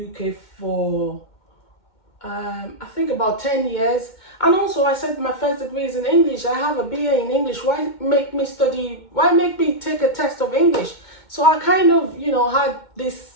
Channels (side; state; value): right; late; 2.2 ms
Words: UK for I think about 10 years. And also I said my first degree is in English. I have a BA in English. Why make me take a test of English? So I kind of, had